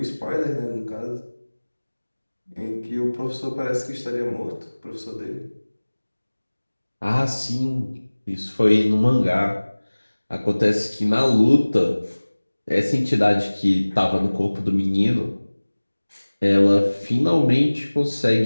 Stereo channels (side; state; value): both; inverted; correlation -1.00